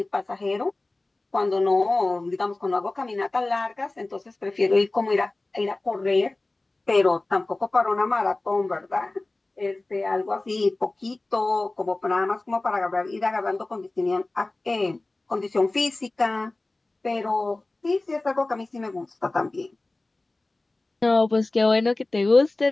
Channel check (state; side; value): quieter; right; 3.0 dB